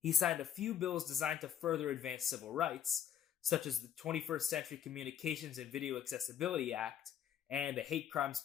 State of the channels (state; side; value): quieter; right; 9.4 dB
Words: signed a few bills designed to further advance civil rights, such as the 21st Century Communications and Video Accessibility Act and the Hate Crimes